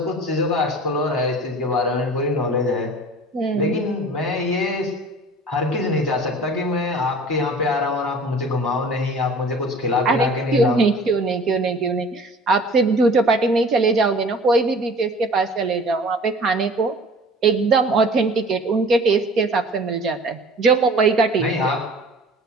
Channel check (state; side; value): normal; both; correlation 0.45